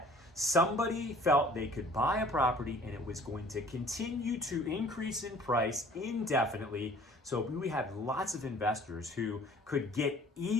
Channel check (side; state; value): both; normal; correlation 0.51